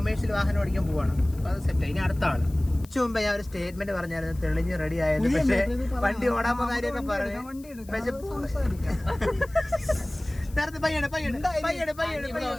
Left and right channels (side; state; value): left; noise; hiss, 23 dB below the sound